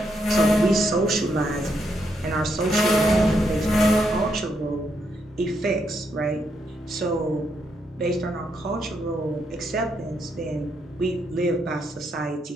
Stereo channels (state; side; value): normal; both; correlation 0.78